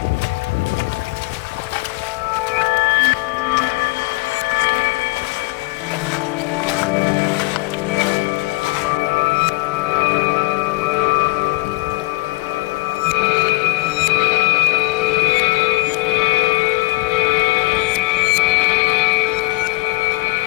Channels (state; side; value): quieter; right; 26.4 dB